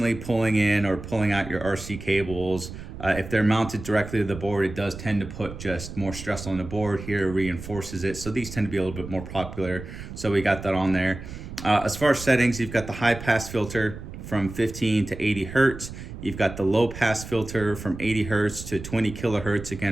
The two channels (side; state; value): right; noise; rumble, 11 dB below the sound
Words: pulling in or pulling out your RC cables. If they're mounted directly to the board, it does tend to put just more stress on the board. Here reinforces it, so these tend to be a little bit more popular, so we got that on there. As far as settings, you've got the high pass filter from 15 to 80 hertz. You've got the low pass filter from 80 hertz to 20 kilohertz,